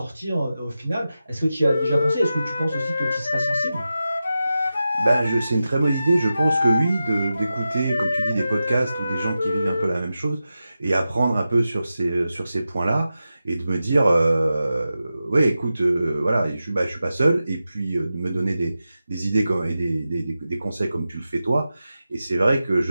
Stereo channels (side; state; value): both; inverted; correlation -0.92